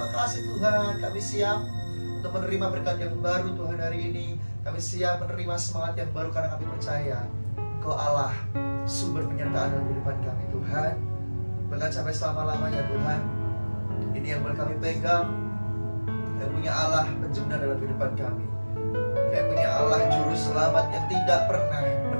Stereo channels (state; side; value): inverted; both; correlation -1.00